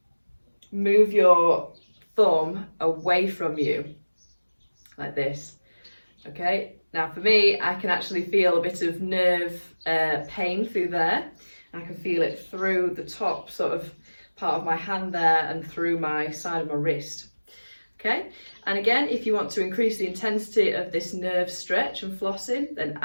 move your thumb away from you like this. Okay, now for me, I can actually feel a bit of nerve pain through there. I can feel it through the top sort of part of my hand there and through my side of my wrist. Okay, and again, if you want to increase the intensity of this nerve stretch and flossing, then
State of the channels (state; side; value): inverted; both; correlation -1.00